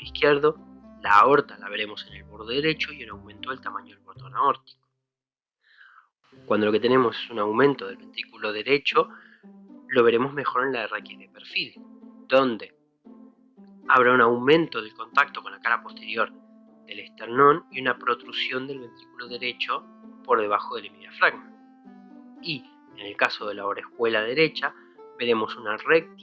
izquierdo, la aorta la veremos en el borde derecho y el aumento del tamaño del bordón aórtico. Cuando lo que tenemos es un aumento del ventrículo derecho, lo veremos mejor en la RX de perfil, donde habrá un aumento del contacto con la cara posterior del esternón y una protrusión del ventrículo derecho por debajo del hemidiafragma. Y en el caso de la orejuela derecha, veremos una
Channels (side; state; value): both; identical; correlation 1.00